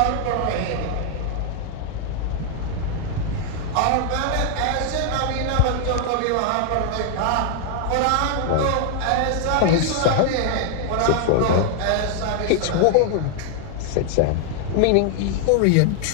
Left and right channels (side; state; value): both; different; correlation 0.00